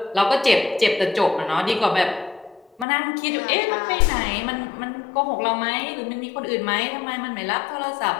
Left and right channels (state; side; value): drops out; right; at 2.9 s